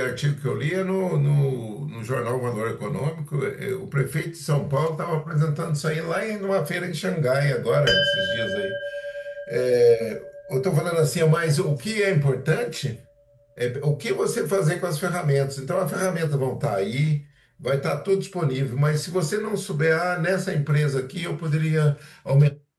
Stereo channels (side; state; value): both; identical; correlation 1.00